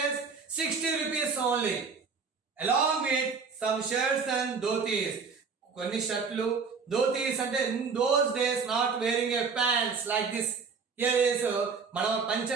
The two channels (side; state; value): left; quieter; 5.2 dB